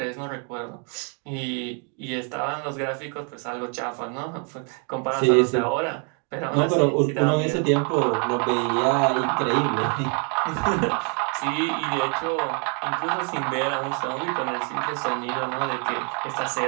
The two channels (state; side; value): quieter; left; 36.1 dB